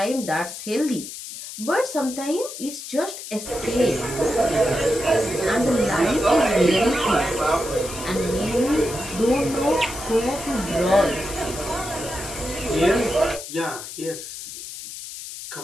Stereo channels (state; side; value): noise; left; hiss, 10 dB below the sound